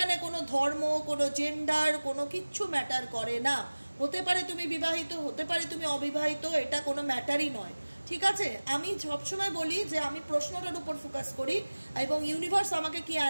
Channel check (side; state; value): both; inverted; correlation -1.00